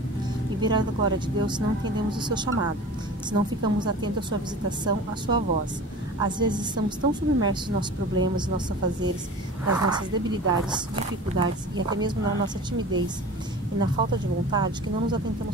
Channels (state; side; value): normal; both; correlation 0.37